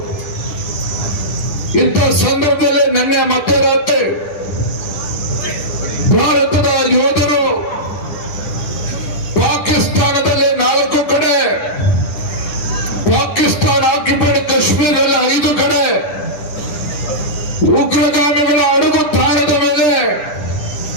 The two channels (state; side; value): late; right; 10 ms